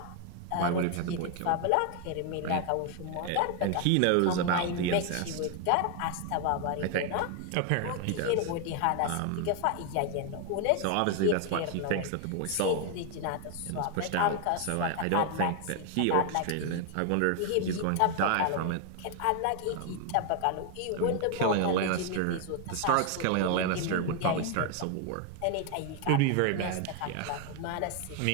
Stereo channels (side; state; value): both; different; correlation 0.00